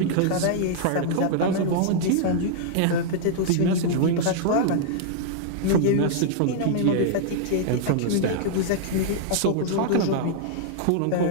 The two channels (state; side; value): different; both; correlation -0.01